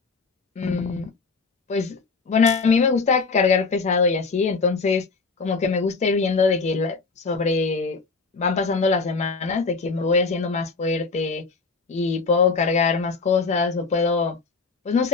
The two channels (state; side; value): quieter; right; 4.4 dB